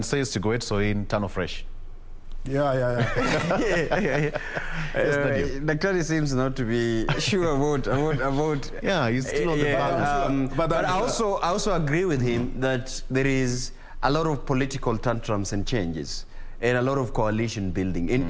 say Sigoet, so in Tano Fresh. Yeah. Daktari seems not to be sure about. Yeah, he's still on the balance. But I also agree with him that there is a lot of political tantrums and changes, and a lot of coalition building,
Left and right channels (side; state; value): both; identical; correlation 1.00